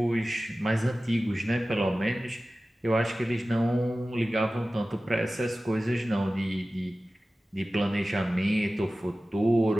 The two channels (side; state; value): both; normal; correlation 0.96